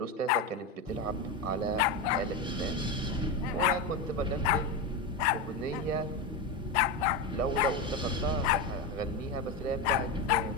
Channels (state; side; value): quieter; right; 3.0 dB